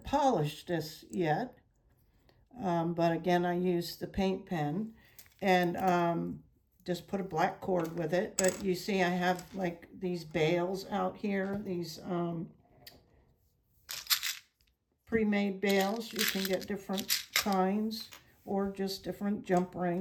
polished this yet, but again, I used the paint pen and just put a black cord with it. But you see I have like these bails out here, these pre-made bails. You can get different kinds or just different jump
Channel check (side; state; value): both; identical; correlation 1.00